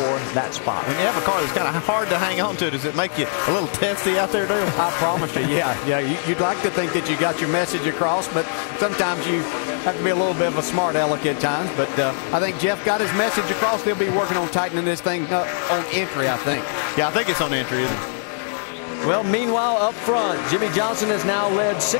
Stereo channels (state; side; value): silent; right; digital silence